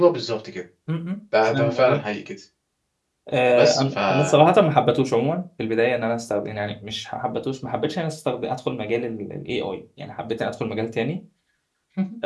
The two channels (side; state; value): both; identical; correlation 1.00